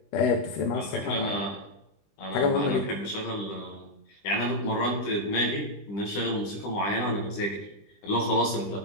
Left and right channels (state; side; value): late; right; 20 ms